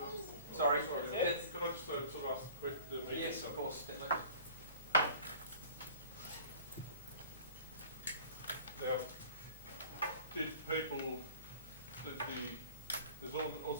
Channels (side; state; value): both; inverted; correlation -0.46